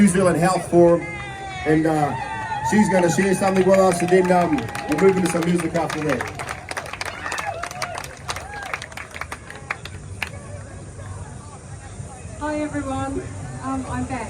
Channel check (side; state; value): both; identical; correlation 1.00